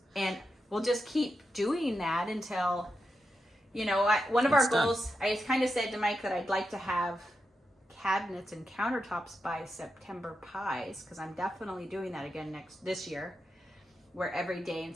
we'll just keep doing that until, you know, one of our goals, I kind of said to Mike that I'd like to have cabinets and countertops by September pies, because I'm definitely doing that again this year, where every day in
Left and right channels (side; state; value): both; normal; correlation 0.87